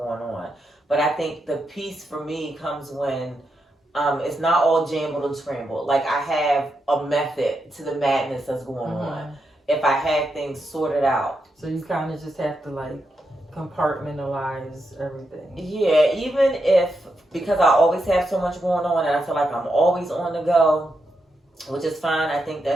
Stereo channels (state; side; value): normal; both; correlation 0.84